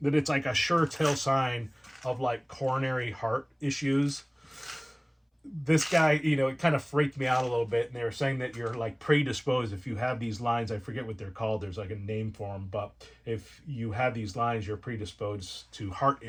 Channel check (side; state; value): both; identical; correlation 1.00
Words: it's like a sure tell sign of like coronary heart issues. This guy, it kind of freaked me out a little bit. And they were saying that you're like predisposed if you have these lines. I forget what they're called. There's like a name for them. But if you have these lines, you're predisposed to heart